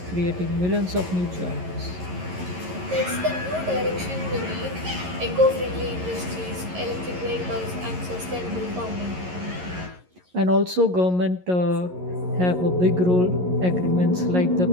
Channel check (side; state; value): left; late; 11 ms